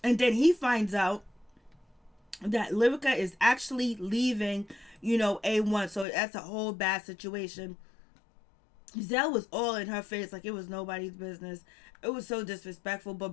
And then he finds out that Lyrica is actually leaving, A1. So that's a whole bad situation. Zell was all in her face like it was nobody's business. It was so disrespectful, but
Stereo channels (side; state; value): right; drops out; at 6.1 s